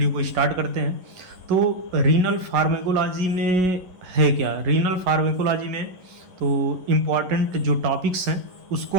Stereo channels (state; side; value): late; left; 11 ms